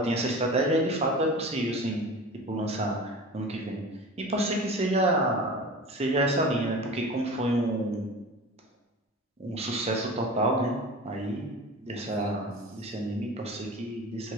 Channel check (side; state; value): both; normal; correlation 0.35